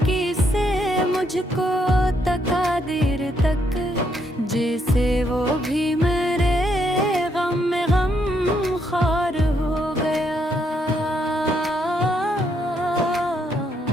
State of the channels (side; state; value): both; normal; correlation 0.75